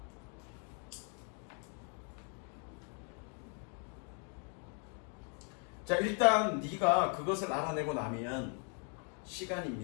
자, 일단 네가 그것을 알아내고 나면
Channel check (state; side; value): quieter; right; 38.4 dB